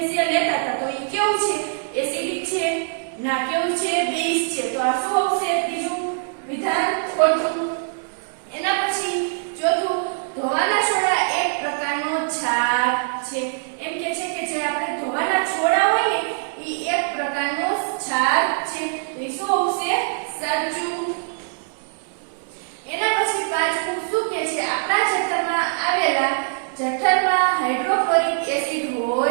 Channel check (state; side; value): silent; left; digital silence